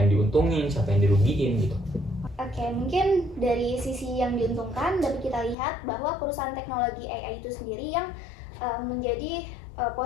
diuntungin, siapa yang dirugiin gitu. Oke, mungkin dari sisi yang diuntungkan dapat kita lihat bahwa perusahaan teknologi AI itu sendiri yang menjadi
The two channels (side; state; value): right; drops out; at 5.6 s